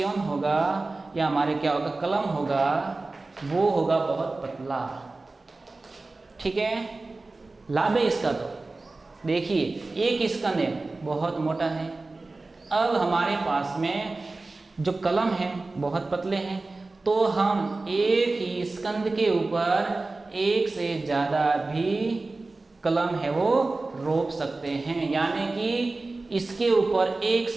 होगा या हमारे क्या होगा? कलम होगा, वो होगा बहुत पतला, ठीक है। लाभ है इसका तो देखिए, एक स्कंद है बहुत मोटा है। अब हमारे पास में जो कलम है बहुत पतले हैं, तो हम एक ही स्कंद के ऊपर एक से ज़्यादा भी कलम है वो रोप सकते हैं। यानी कि इसके ऊपर एक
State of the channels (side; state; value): left; quieter; 3.4 dB